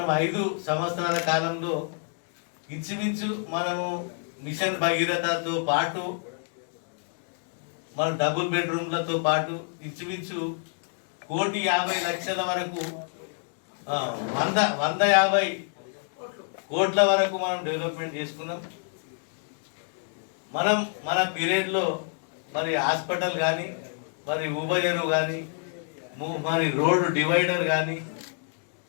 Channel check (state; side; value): silent; right; 60 dB below the other